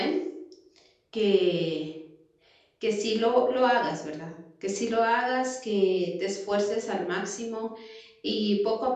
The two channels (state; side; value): identical; both; correlation 1.00